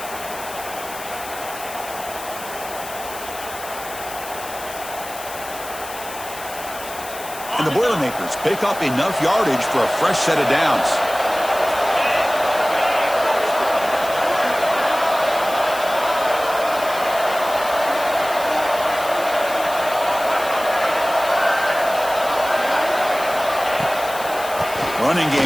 And the Boilermakers pick up enough yardage for a fresh set of downs. Running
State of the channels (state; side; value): noise; left; hiss, 13 dB below the sound